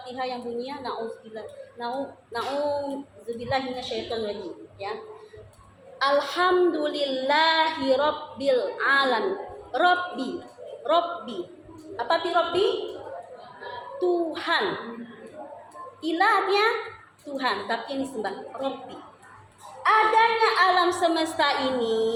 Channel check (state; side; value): identical; both; correlation 1.00